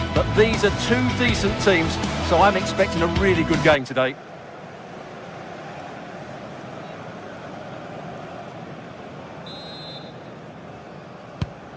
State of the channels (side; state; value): both; identical; correlation 1.00